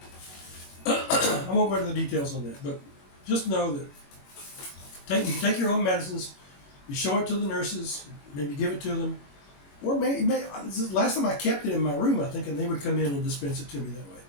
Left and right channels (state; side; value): late; right; 21 ms